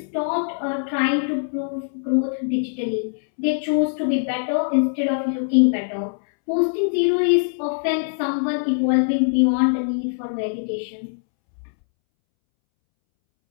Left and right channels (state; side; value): silent; right; 64 dB below the other